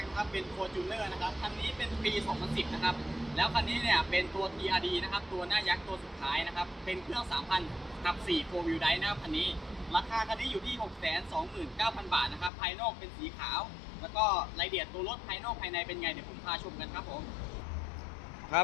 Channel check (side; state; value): right; drops out; at 12.5 s